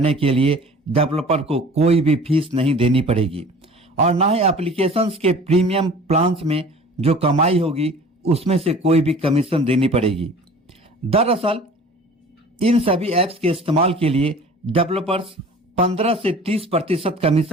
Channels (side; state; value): both; normal; correlation 0.45